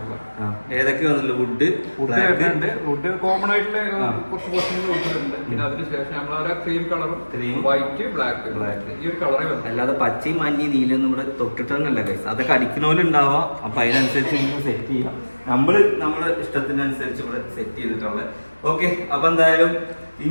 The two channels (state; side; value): inverted; both; correlation -1.00